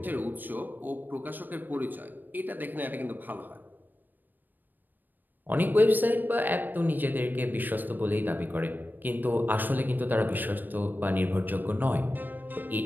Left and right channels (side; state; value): left; late; 0.090 ms